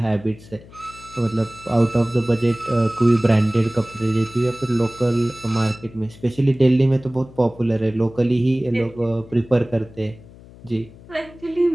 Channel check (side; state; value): left; noise; hum, 21 dB below the sound